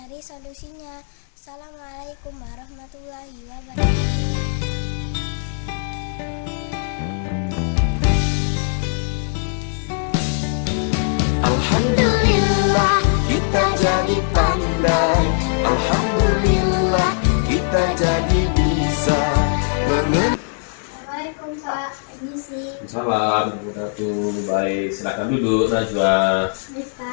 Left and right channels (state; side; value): silent; right; 65 dB below the other